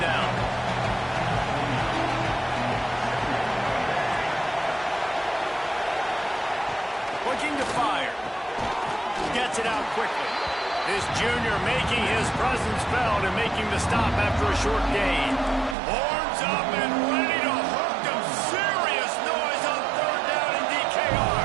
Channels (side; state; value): left; drops out; at 15.8 s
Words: down. Looking to fire. Gets it out quickly. This junior making his presence felt and making the stop after a short gain. Horns up and ready to hook them. Serious noise on 3rd down in